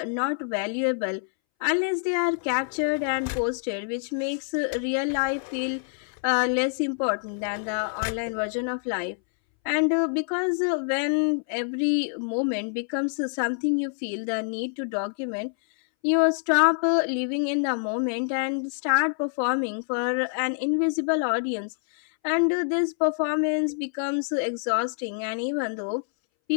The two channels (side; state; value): right; silent; 61 dB below the other